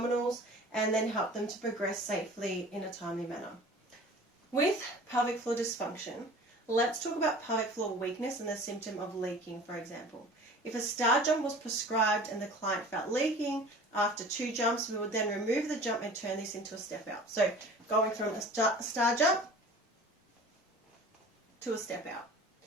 and then help them to progress safely in a timely manner. With pelvic floor dysfunction, let's talk about pelvic floor weakness and the symptom of leaking, for example. If a star jump was prescribed and the client felt leaking after 2 jumps, we would then remove the jump and turn this into a step out. So going from a star jump to a step out.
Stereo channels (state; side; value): normal; both; correlation 0.43